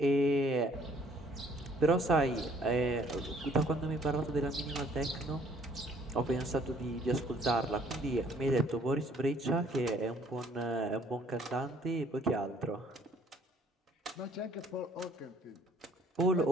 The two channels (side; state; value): both; normal; correlation 0.60